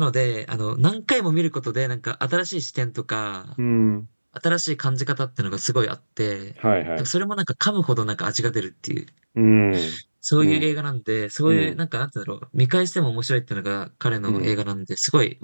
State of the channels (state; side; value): inverted; both; correlation -1.00